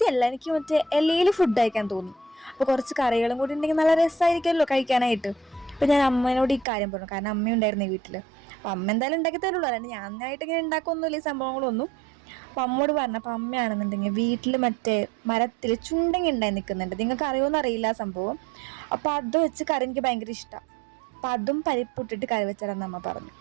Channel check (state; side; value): drops out; left; at 6.7 s